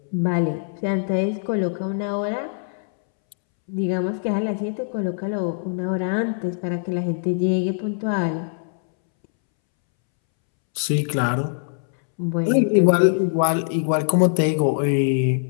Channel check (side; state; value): right; silent; 64 dB below the other